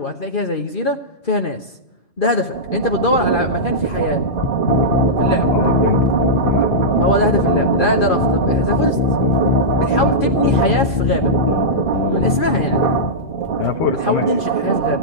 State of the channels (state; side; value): late; right; 2.4 ms